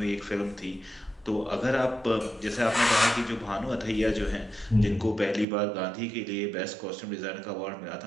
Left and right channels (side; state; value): left; drops out; at 5.5 s